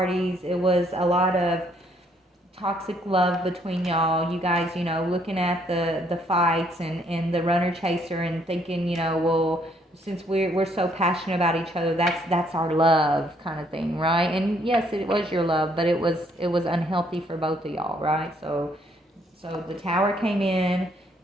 It was a lot of toxic love between y'all. You guys, looking at the fights and the runner chaser and thinking, well, since we're so passionate about each other, that's our love kind of thing, right? And yes, it was your love, but it was unhealthy for both of y'all, right? So the tower came in,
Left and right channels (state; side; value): normal; both; correlation 0.67